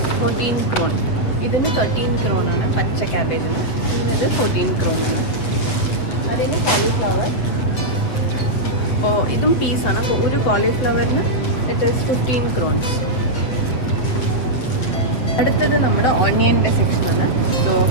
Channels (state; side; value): late; right; 7.8 ms